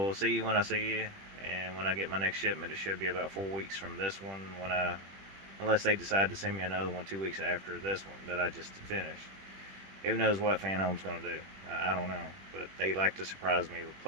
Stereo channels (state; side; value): late; left; 21 ms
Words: see you when I see you, and when I get my next shipment, it should be about 4 weeks from this one. Unless they decide to send me another one 2 weeks after this one that I just finished. Who knows what Fanhome's going to do? I don't know, but they like to surprise me